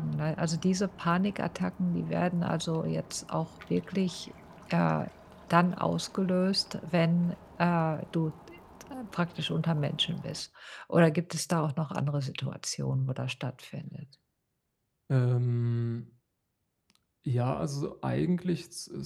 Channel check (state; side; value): identical; both; correlation 1.00